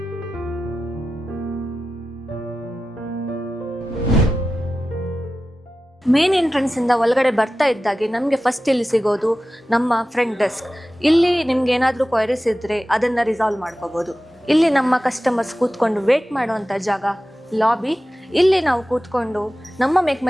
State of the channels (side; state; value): both; normal; correlation 0.94